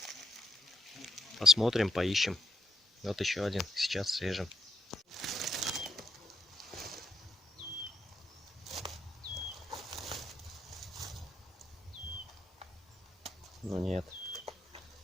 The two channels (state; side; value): normal; both; correlation 0.79